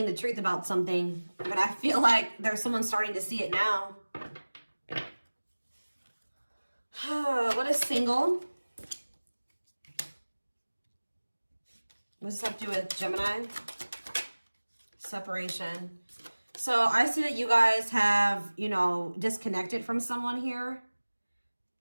the truth about something, but I feel like there's someone starting to see it now. What is single? What does this have to do with Gemini? Separation. So I see that you guys have, you know, disconnected from someone here.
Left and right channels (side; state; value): both; inverted; correlation -1.00